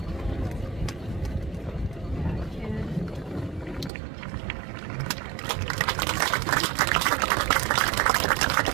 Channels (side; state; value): left; drops out; at 3.9 s